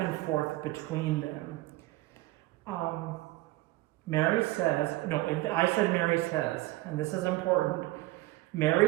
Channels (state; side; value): quieter; left; 18.7 dB